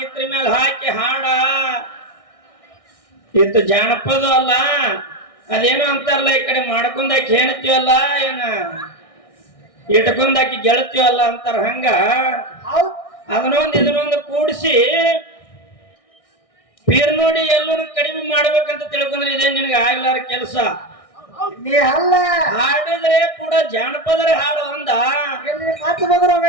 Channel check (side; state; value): right; late; 1.6 ms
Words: ಹಾಕಿ ಹಾಡ ಇತ್ತು ಜಾನಪದ ಅಲ್ಲ ಅದೇನು ಅಂತಾರಲ್ಲ ಈ ಕಡೆ ಮಾಡ್ಕೊಂಡಾಕಿ ಹೆಣ್ತೀವಲ್ಲ ಏನ ಇಟ್ಕೊಂಡಾಕಿ ಗೆಳತೀವಲ್ಲ ಅಂತಾರ ಹಂಗ ಇದನ್ನೊಂದು ಕೂಡಿಸಿ ಪೀರ್ ನೋಡಿ ಎಲ್ಲೂ ಕಡಿಮೆ ಮಾಡ್ಬೇಕಂತ ತಿಳ್ಕೊಂಡ್ರೆ ಇದೇ ನಿನಗೆ ಆಗ್ಲಾರ ಕೆಲಸ. ನೀ ಅಲ್ಲ ಹಾಡಿದ್ರೆ ಕೂಡ ಜಾನಪದರ ಹಾಡು ಅಂದ ಮಾತು ಬಂದ್ರೆ